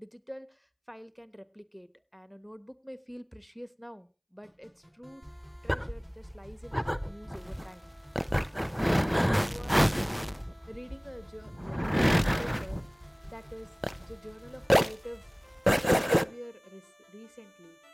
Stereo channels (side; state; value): both; identical; correlation 1.00